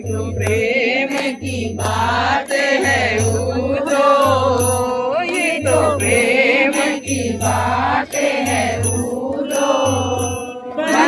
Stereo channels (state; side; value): identical; both; correlation 1.00